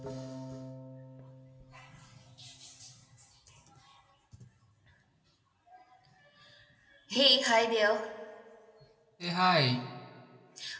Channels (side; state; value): both; identical; correlation 1.00